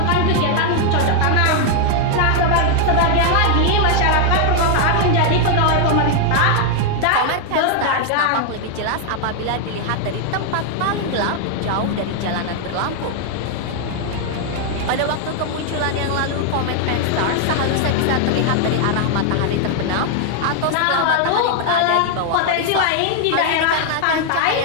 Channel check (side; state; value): both; different; correlation 0.00